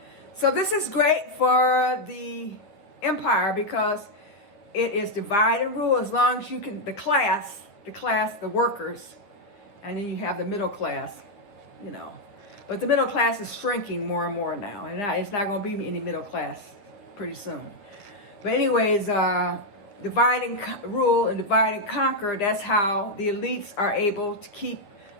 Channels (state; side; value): late; right; 9.6 ms